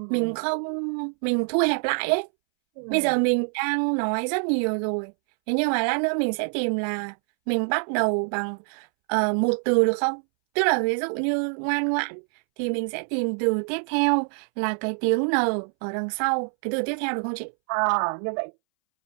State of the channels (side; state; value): left; silent; 62 dB below the other